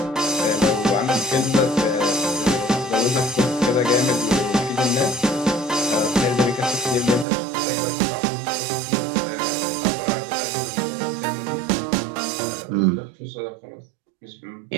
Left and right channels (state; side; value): drops out; left; at 7.2 s